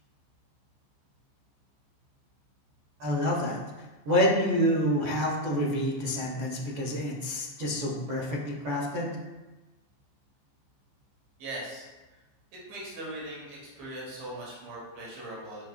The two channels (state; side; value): late; left; 14 ms